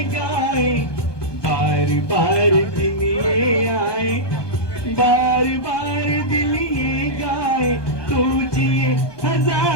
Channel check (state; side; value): late; right; 1.2 ms